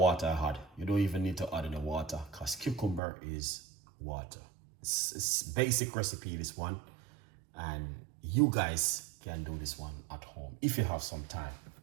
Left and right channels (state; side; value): drops out; left; at 3.0 s